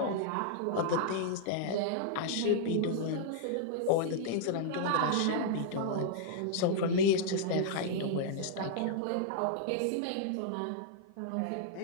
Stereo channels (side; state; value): both; different; correlation -0.01